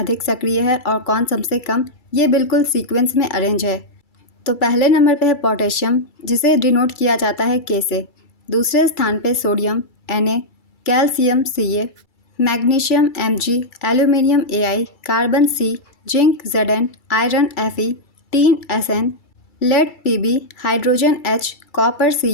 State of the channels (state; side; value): late; right; 2.3 ms